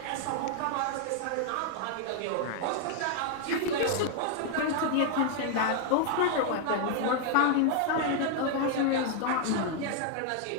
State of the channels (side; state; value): both; different; correlation 0.00